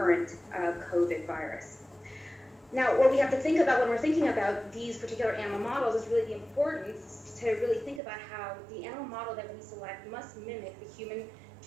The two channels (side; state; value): left; drops out; at 8.0 s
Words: COVID virus. Now, what we have to think about when we're thinking about these particular animal models is really the importance to really think about how the animal model that we select must mimic the human